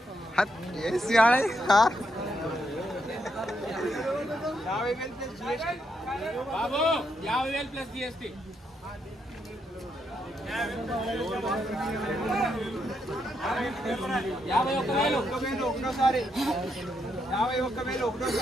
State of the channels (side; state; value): both; normal; correlation 0.79